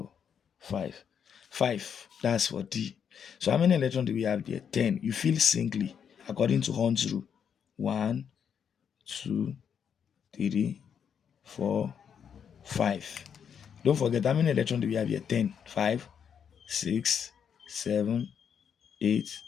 5. 5. That's for D. So how many electrons do we have there? 10. You fill singly according to Hund's rule. 1, 2, 3, 4, 5. Don't forget how many electrons do we have here? 10. 5, 6, 7, 8,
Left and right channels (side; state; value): right; quieter; 7.7 dB